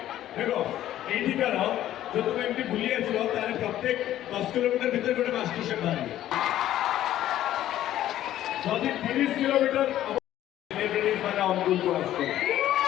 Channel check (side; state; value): right; quieter; 12.8 dB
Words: দেখো এইদিকার जो तुम एमटी भूली आसो तारे प्रत्येक 10 किलोमीटर भीतर गोटे मास्टर शेफ बाहर जदि 30 किलोमीटर सेलिब्रिटीज माने अनुकूल को आसो